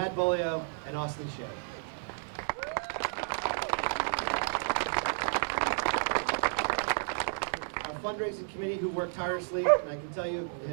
Bolio, and Austin Shea. Our fundraising committee, who worked tirelessly, and I can tell you,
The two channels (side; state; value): left; silent; digital silence